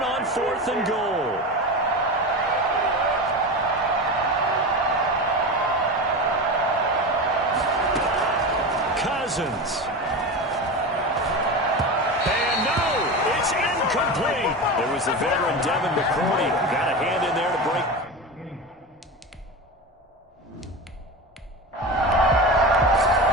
on 4th and goal. Cousins. And no, it's incomplete. There was the veteran Devin McCourty. Got a hand in there to break.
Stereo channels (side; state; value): both; normal; correlation 0.24